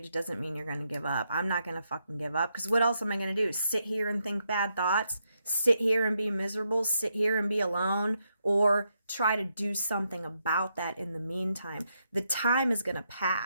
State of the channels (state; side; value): inverted; both; correlation -0.80